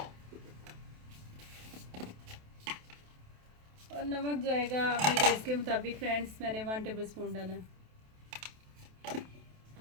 और नमक जाएगा अपने टेस्ट के मुताबिक फ्रेंड्स, मैंने 1 टेबलस्पून डाला है।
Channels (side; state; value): left; late; 28 ms